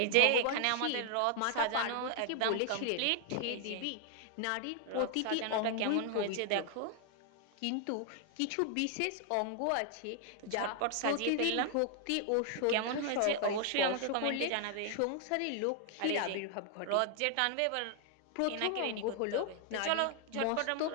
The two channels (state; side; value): different; both; correlation 0.00